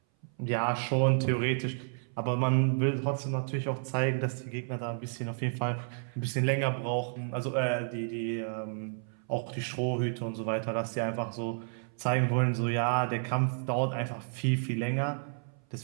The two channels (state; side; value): silent; left; 57 dB below the other